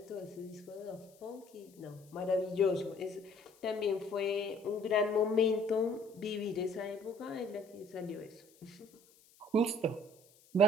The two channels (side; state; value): left; noise; hiss, 28 dB below the sound